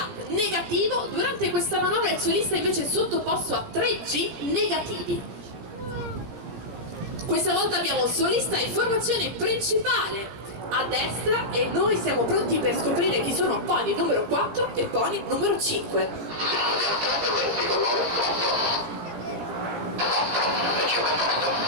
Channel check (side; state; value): left; late; 17 ms